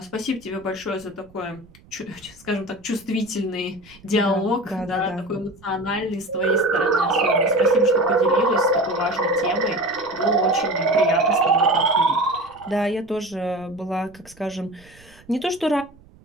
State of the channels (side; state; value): right; noise; rumble, 26 dB below the sound